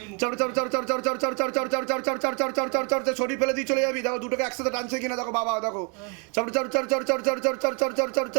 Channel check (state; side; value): quieter; left; 34.8 dB